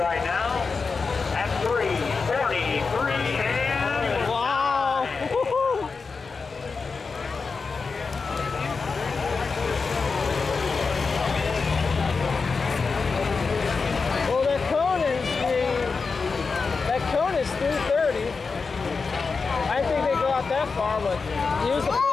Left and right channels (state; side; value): quieter; right; 4.7 dB